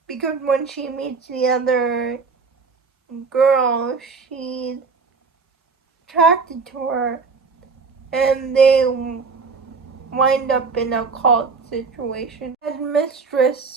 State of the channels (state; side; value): quieter; left; 4.8 dB